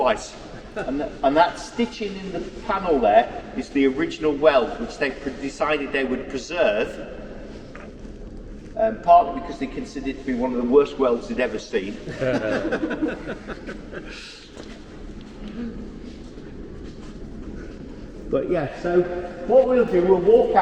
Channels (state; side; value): identical; both; correlation 1.00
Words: And that stitching in the panel there is the original weld, which they decided they would preserve, partly because they considered it to be one of the worst welds they'd ever seen. But yeah, so what we'll do, we'll walk